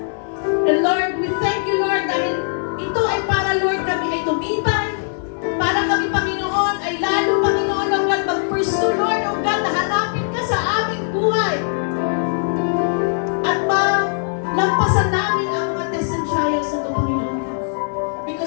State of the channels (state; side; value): silent; right; digital silence